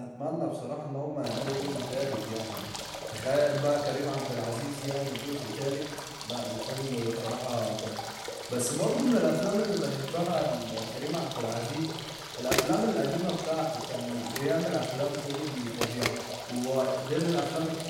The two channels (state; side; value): identical; both; correlation 1.00